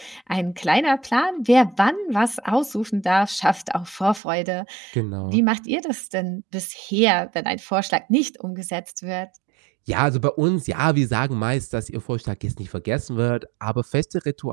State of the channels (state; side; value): drops out; left; at 4.2 s